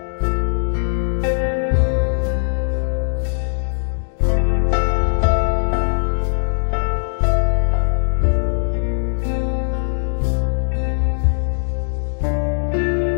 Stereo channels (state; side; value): silent; right; digital silence